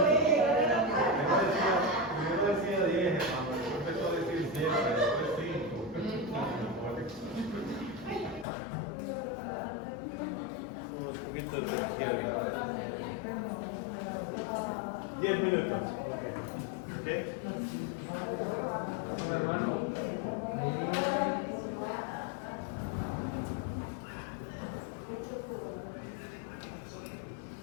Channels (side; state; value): right; drops out; at 8.5 s